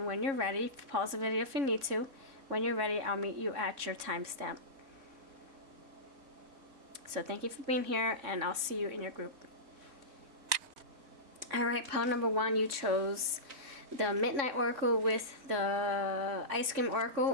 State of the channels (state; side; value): late; left; 3.6 ms